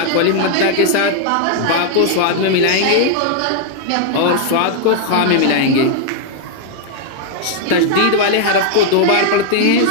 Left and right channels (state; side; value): different; both; correlation 0.00